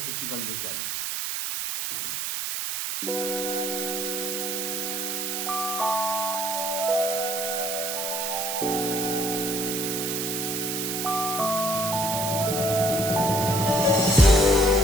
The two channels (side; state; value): right; noise; hiss, 2 dB below the sound